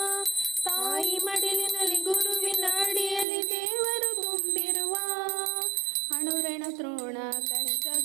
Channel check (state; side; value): drops out; left; at 3.2 s